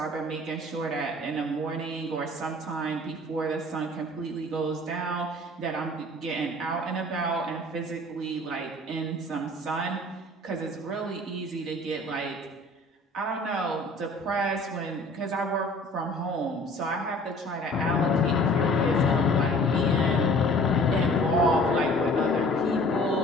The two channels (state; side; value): normal; both; correlation 0.49